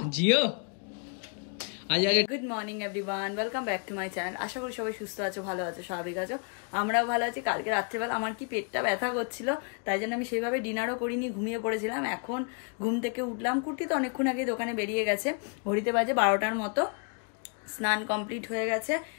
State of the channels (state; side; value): quieter; right; 39.1 dB